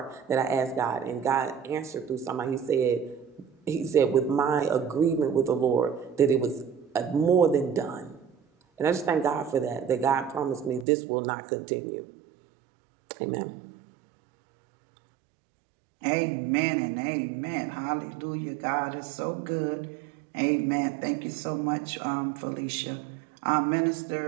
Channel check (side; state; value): left; drops out; at 10.9 s